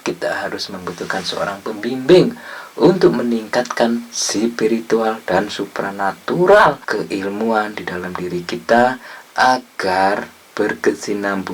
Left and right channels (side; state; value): both; identical; correlation 1.00